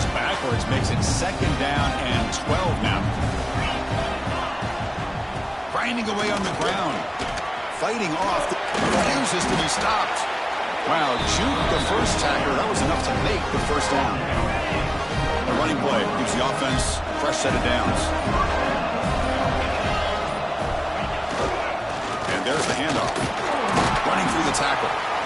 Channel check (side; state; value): both; identical; correlation 1.00